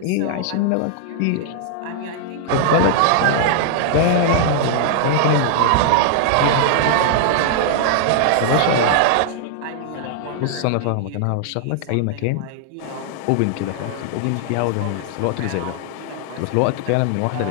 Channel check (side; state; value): both; different; correlation -0.01